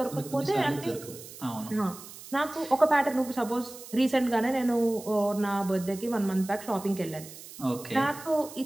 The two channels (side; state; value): right; noise; hiss, 15 dB below the sound